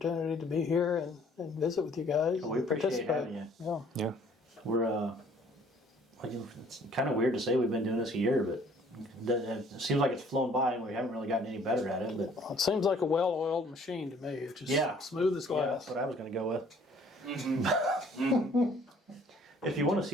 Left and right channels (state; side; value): normal; both; correlation 0.57